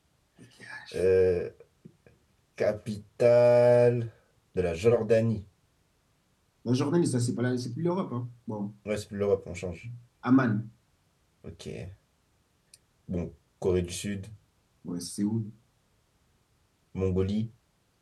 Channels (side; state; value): both; identical; correlation 1.00